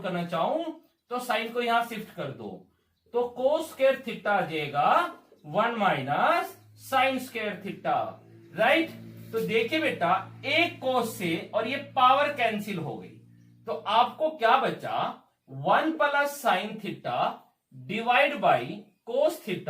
करना चाहूं तो साइन को यहां शिफ्ट कर दो, तो कोस स्क्वायर थीटा आ जाएगा 1 minus sine square theta, right. तो देखिए बेटा, एक कोस से और ये पावर कैंसिल हो गई, तो आपको क्या बचा, 1 plus sine theta divide by cos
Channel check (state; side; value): identical; both; correlation 1.00